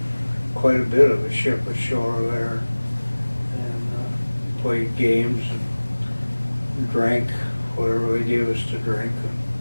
quite a bit of the ship ashore there and played games and drank whatever they gave us to drink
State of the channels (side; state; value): both; inverted; correlation -1.00